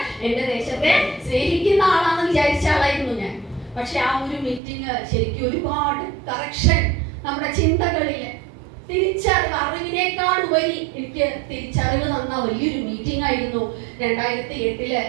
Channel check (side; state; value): left; drops out; at 4.6 s